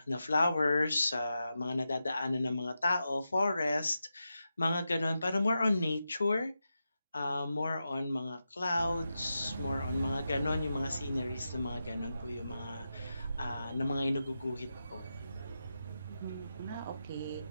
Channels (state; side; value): inverted; both; correlation -0.89